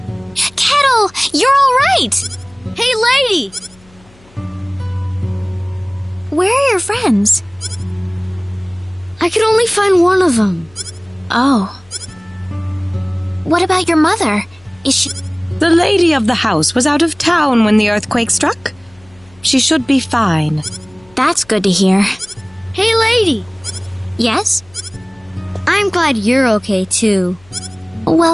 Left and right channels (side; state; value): left; noise; hum, 28 dB below the sound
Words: Kettle, you're all right. Hey, lady! Where are your friends? I could only find one of them. Oh. What about your mother? Is she... The lady of the house was out of town when the earthquake struck. She should be fine. That's good to hear. Hey, lady! Yes? I'm glad you're okay, too.